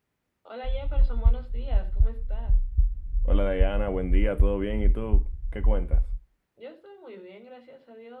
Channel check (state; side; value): identical; both; correlation 1.00